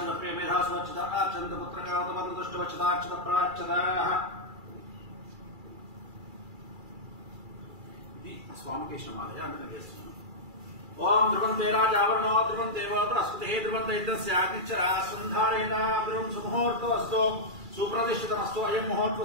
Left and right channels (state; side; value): late; left; 2.3 ms